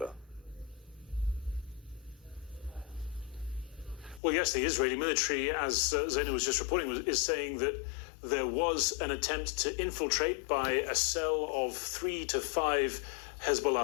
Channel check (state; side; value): drops out; right; at 4.2 s